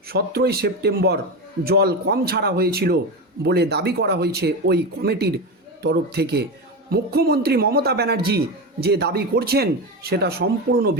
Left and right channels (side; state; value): both; normal; correlation 0.18